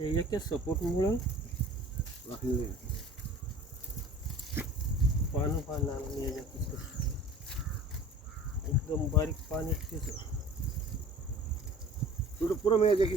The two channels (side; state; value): both; normal; correlation 0.44